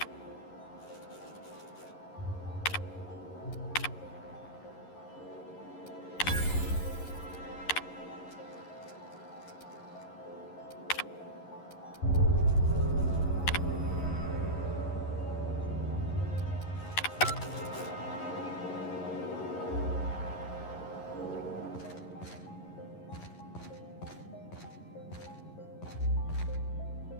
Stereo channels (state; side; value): late; right; 11 ms